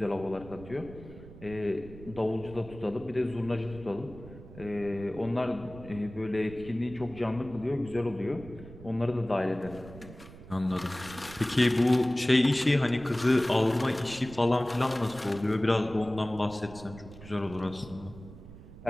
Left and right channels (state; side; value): noise; right; rumble, 16 dB below the sound